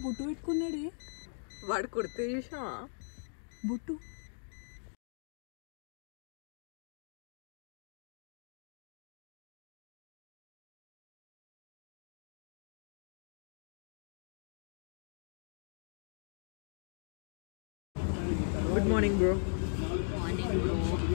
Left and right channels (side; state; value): right; silent; digital silence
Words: బొట్టు పెట్టుకున్నాడు వాడు. కుర్తి చూసావా బొట్టు? Good morning bro.